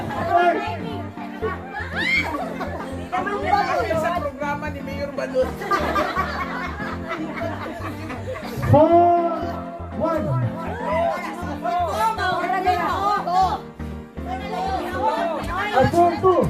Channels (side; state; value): both; identical; correlation 1.00